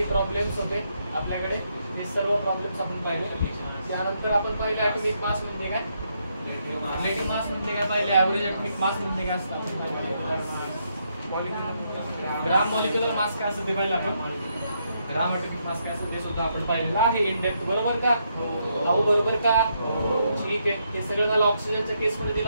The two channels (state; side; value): inverted; both; correlation -0.77